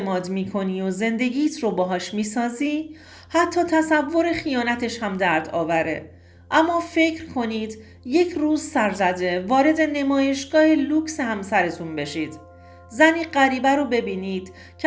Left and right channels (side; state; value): both; identical; correlation 1.00